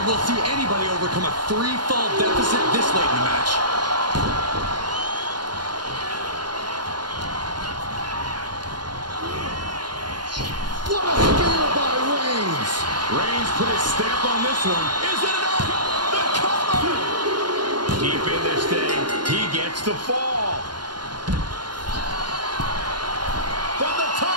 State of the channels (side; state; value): left; late; 0.71 ms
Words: we'll see anybody overcome a 3-fall deficit this late in the match. What a spear by Reigns. Reigns put his stamp on this one. Is it enough? The cover! Deep in this thing, he gets the fall. From the